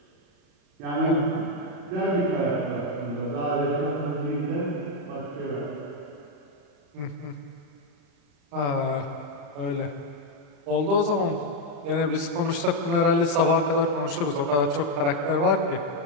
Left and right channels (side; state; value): left; late; 35 ms